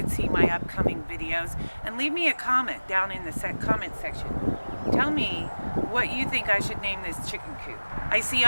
see my upcoming videos. And leave me a comment down in the comment section. Tell me what you think I should name this chicken coop. I see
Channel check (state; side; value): inverted; both; correlation -1.00